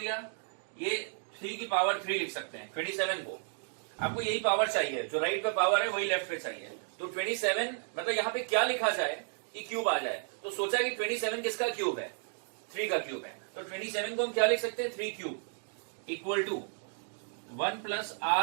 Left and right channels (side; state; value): left; silent; 56 dB below the other